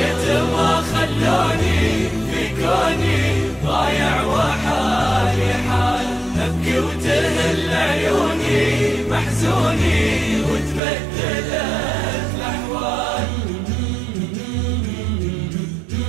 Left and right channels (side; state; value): left; drops out; at 10.8 s